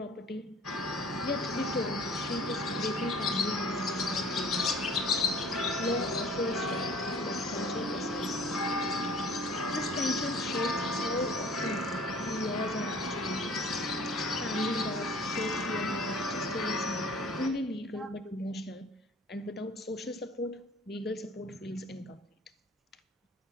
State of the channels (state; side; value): normal; both; correlation 0.49